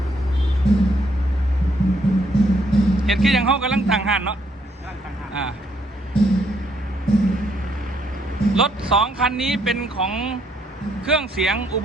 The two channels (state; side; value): normal; both; correlation 0.71